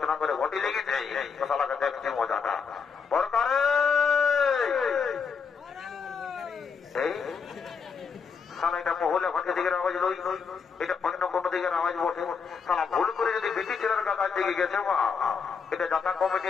করে ঘটি লেগেছে তো সালাকে দেখছি মজাটা বরকারে। এই সালা এটা মহলে ঘটের দিকের আওয়াজ লই, এটা অন্য কোন দিকের আওয়াজ বটে। সালা ভুল করে যদি বেটি ছেলের কাছে দিকে গেছে বা এটা যাতা কমিটি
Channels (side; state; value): right; quieter; 5.8 dB